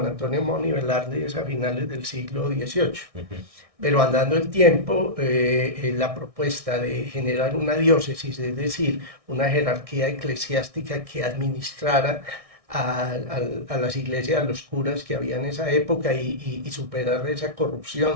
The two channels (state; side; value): late; left; 1.6 ms